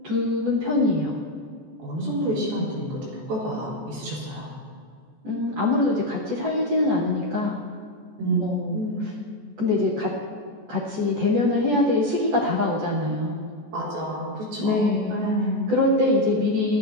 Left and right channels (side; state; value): left; late; 14 ms